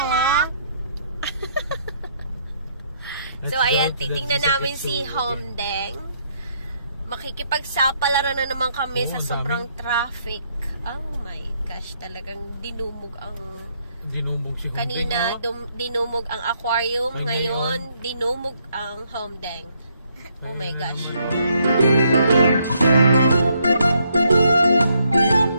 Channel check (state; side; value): inverted; both; correlation -0.73